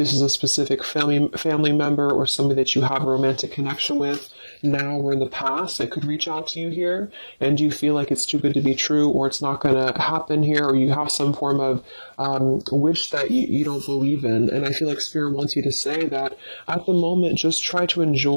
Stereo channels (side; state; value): both; inverted; correlation -1.00